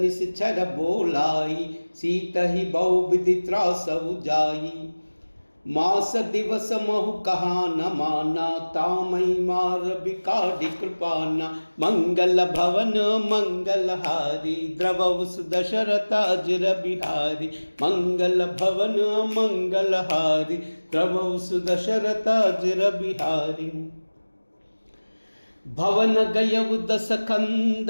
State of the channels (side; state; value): both; inverted; correlation -1.00